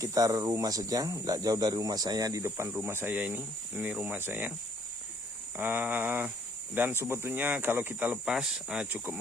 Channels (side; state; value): both; normal; correlation 0.63